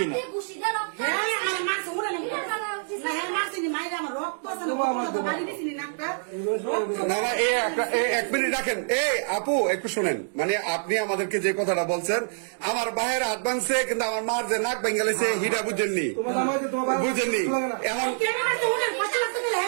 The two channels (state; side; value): silent; left; digital silence